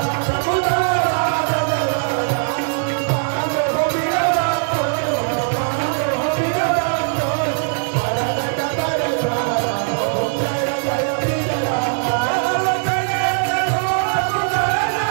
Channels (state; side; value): silent; left; digital silence